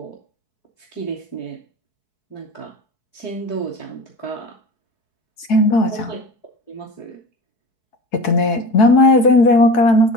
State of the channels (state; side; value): late; right; 4.7 ms